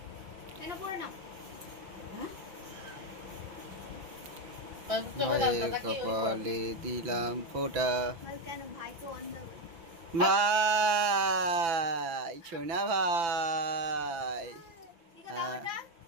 কেন পড়ে না? ভাইয়ের কপালে দিলাম ফোঁটা। কেন ভাই তো অন্ধ। ভাই সোনা ভাই,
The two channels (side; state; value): left; late; 6.0 ms